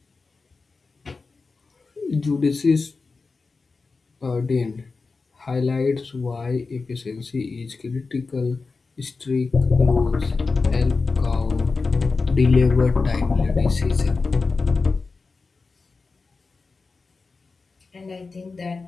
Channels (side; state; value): right; quieter; 4.2 dB